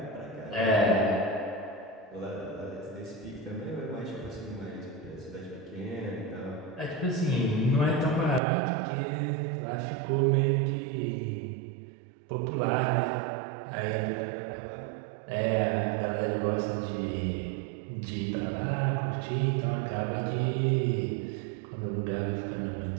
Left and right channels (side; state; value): left; drops out; at 8.4 s